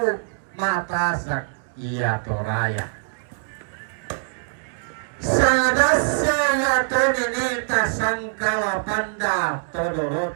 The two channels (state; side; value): silent; left; digital silence